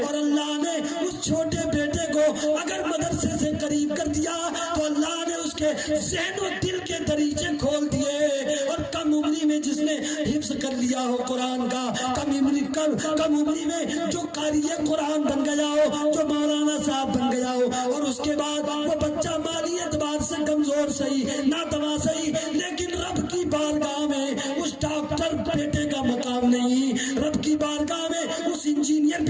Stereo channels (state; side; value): identical; both; correlation 1.00